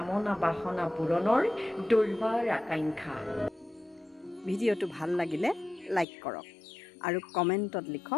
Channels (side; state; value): right; drops out; at 6.1 s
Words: বাসনা পূৰণৰ দুৰ্বাৰ আকাংক্ষা। ভিডিঅ'টো ভাল লাগিলে লাইক কৰক আৰু কমেণ্টত